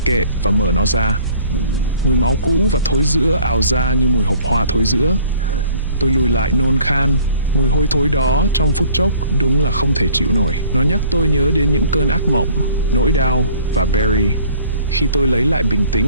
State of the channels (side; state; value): both; inverted; correlation -0.53